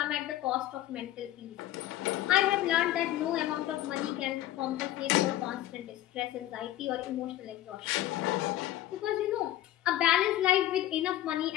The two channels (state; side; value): quieter; right; 14.1 dB